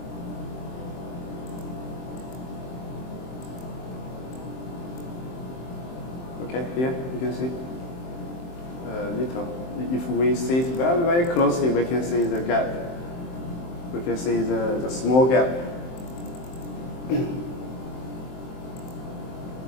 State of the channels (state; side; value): late; right; 23 ms